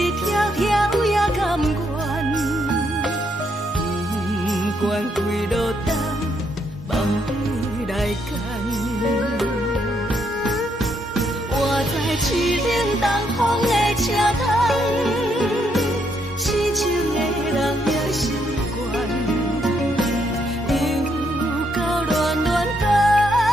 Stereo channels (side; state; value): both; normal; correlation 0.75